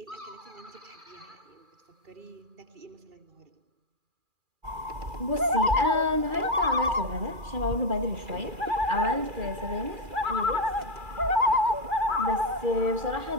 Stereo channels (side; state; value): left; late; 2.4 ms